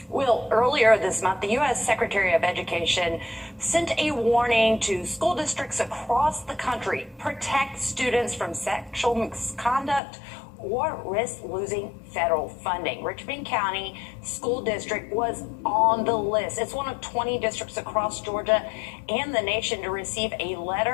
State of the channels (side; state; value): right; drops out; at 10.0 s